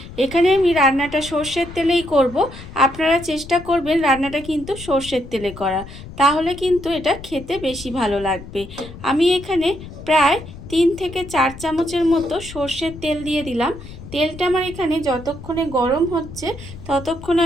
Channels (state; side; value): noise; left; rumble, 14 dB below the sound